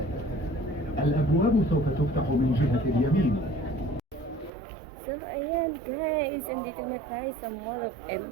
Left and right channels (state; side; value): drops out; left; at 4.5 s